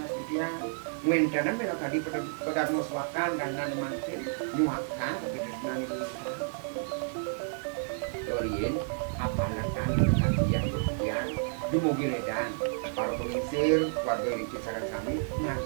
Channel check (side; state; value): left; silent; 57 dB below the other